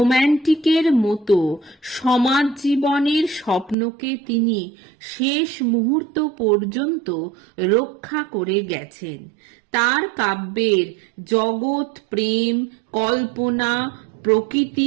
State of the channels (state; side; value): drops out; left; at 3.8 s